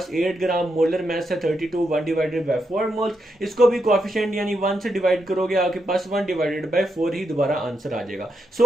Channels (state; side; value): normal; both; correlation 0.82